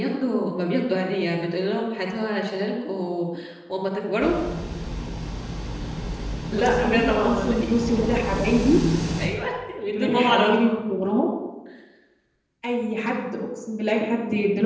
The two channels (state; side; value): identical; both; correlation 1.00